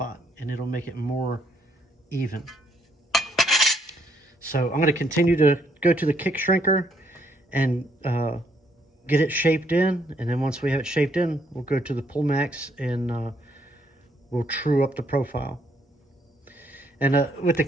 and it'll make it more even. So I'm going to continue to go to the kick shrinker and get it shaped in, and then once we have it shaped in, we'll go to the pull max and we'll true up the profile. And with the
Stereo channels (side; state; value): both; normal; correlation 0.70